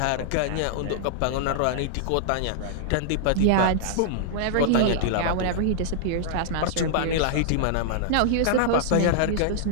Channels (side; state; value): both; different; correlation -0.01